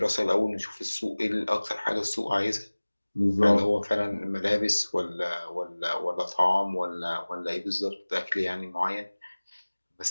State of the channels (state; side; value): inverted; both; correlation -1.00